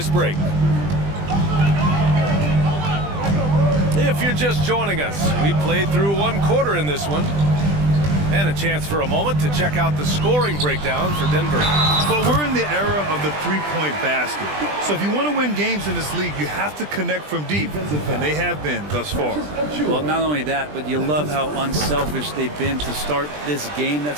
break. If you're just joining us, we played through 1 quarter in this one. And a chance for a moment to check out the scoring breakdown for Denver. But we're in the era of the three-point basket. So if you want to win games in this league, you have to connect from deep. And they have been thus far. Well, not only that, but you love how unselfish they've been to start this game.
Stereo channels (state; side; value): late; left; 20 ms